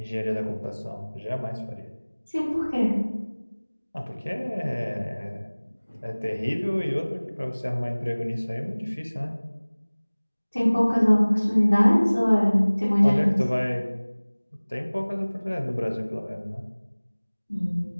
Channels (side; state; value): both; inverted; correlation -1.00